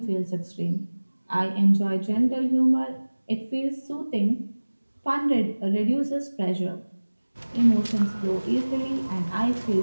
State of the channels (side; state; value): both; inverted; correlation -1.00